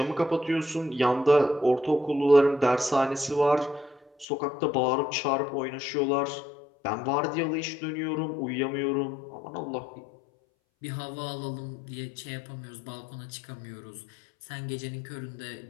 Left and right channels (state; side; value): drops out; right; at 4.2 s